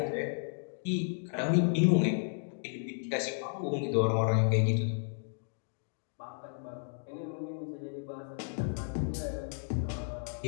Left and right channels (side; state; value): right; silent; digital silence